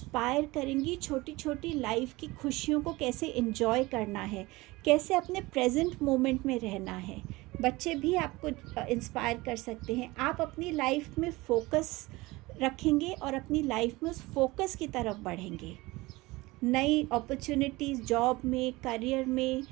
करेंगी छोटी छोटी लाइफ की खुशियों को कैसे एंजॉय करना है, कैसे अपने प्रेजेंट मोमेंट में रहना है। बच्चे भी आपको इंस्पायर कर सकते हैं। आप अपनी लाइफ में फोकस रखेंगे और अपनी लाइफ में उस फोकस की तरफ बढ़ेंगे। नई अपॉर्चुनिटीज़ जॉब में, करियर में,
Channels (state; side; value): quieter; left; 21.2 dB